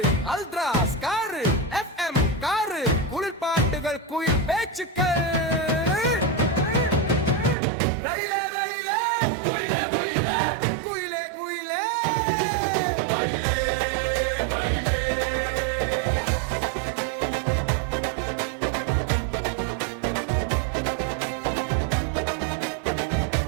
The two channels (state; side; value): drops out; left; at 7.6 s